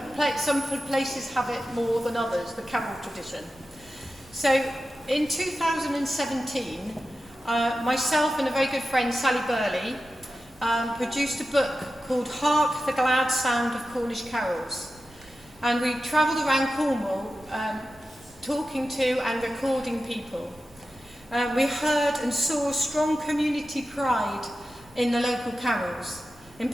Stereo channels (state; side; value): noise; right; rumble, 26 dB below the sound